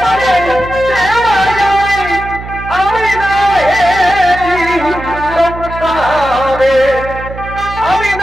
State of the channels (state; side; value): noise; right; hum, 11 dB below the sound